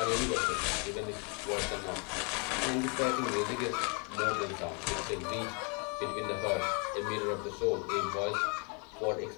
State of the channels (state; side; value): quieter; right; 35.1 dB